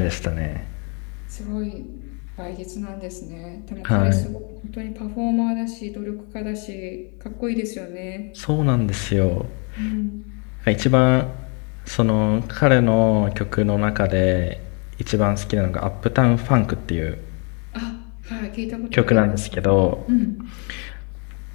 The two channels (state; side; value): quieter; right; 35.7 dB